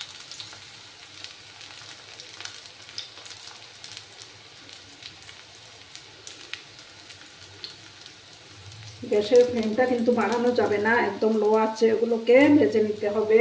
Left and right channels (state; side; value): identical; both; correlation 1.00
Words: গ্যাসের ফ্লেমটা কিন্তু বাড়ানো যাবে না, একদম লো আছে। এগুলোকে ভেজে নিতে হবে।